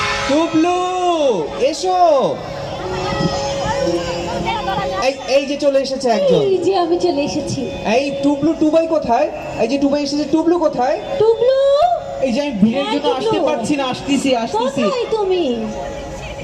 টুবলু এসো। এই এই যে চলে এসেছে একজন। এই যে আমি চলে এসেছি। এই টুবলু, টুবাই কোথায়? এই যে টুবাই এসেছে, টুবলু কোথায়? টুবলু, এই যে আমি ভিড়ের হ্যাঁ, জন্য আসতে টুকলু। পারছি না, আসতেছি আসতেছি। কোথায় তুমি?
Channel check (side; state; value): both; identical; correlation 1.00